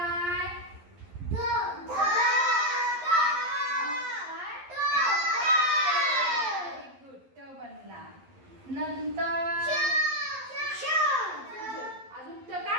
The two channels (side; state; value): left; late; 11 ms